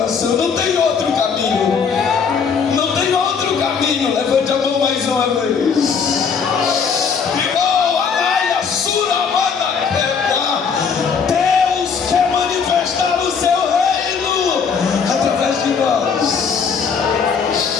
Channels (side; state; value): right; quieter; 6.1 dB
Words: Não tem outro caminho. Não tem outro caminho. Levante a mão mais uma vez. Deus quer manifestar o seu reino através de nós.